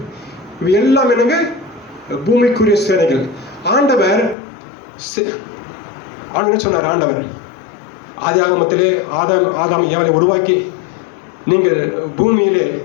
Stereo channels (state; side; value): drops out; right; at 4.4 s